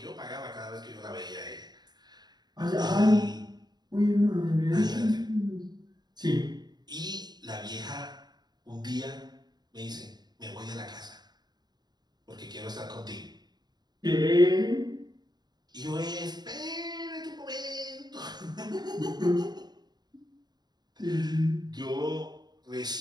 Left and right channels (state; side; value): late; left; 0.20 ms